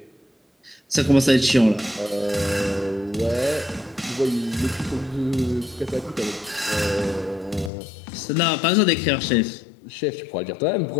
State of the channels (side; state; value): right; drops out; at 7.7 s